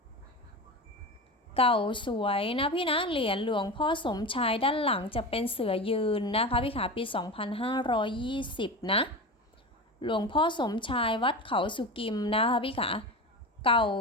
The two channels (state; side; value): normal; both; correlation 0.26